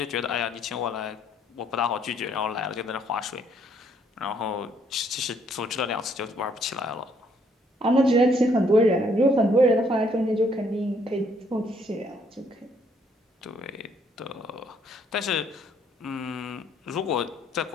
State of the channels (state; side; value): normal; both; correlation 0.67